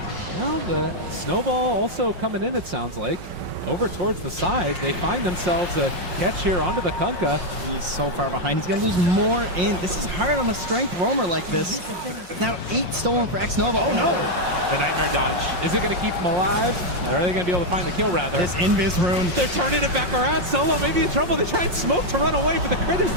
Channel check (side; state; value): left; late; 5.3 ms